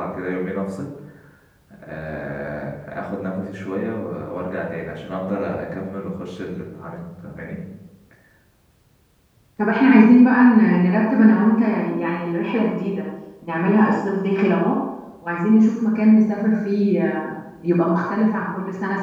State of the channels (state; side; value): identical; both; correlation 1.00